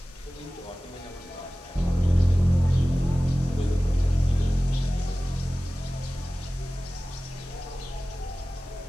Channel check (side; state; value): both; normal; correlation 0.97